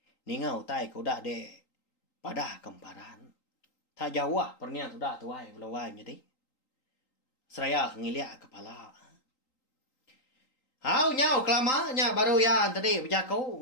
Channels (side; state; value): right; late; 3.8 ms